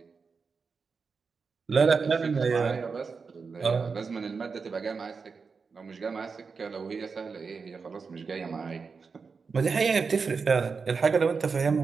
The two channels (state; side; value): quieter; left; 5.1 dB